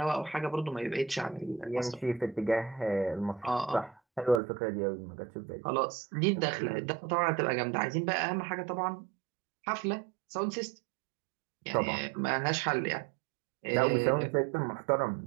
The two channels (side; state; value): left; drops out; at 4.4 s